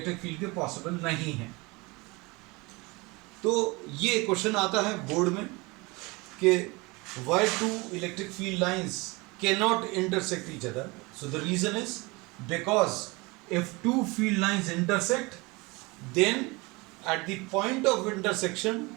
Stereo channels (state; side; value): quieter; left; 25.0 dB